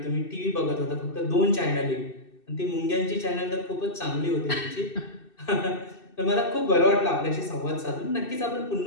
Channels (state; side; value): late; right; 2.6 ms